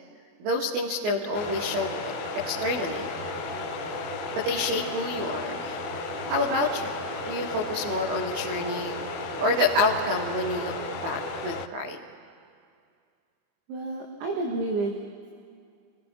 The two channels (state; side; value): late; left; 24 ms